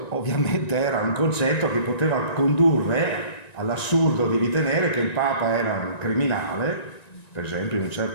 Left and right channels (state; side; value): late; right; 1.9 ms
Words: ovviamente era un concetto che poteva condurre all'assurdo di ritenere che il Papa era un criminale, per esempio in un